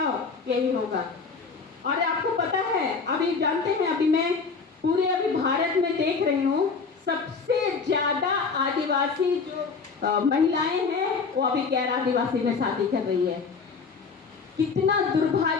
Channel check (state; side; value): quieter; right; 4.9 dB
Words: यही होगा। और आपको पता है, अभी जानते हैं, अभी मैं अभी भारत में देख रही हूँ, सबसे ज्यादा आदिवासी जो महिलाएं हैं वो अभी गैर आदिवासी में शादी कर रही है। कितना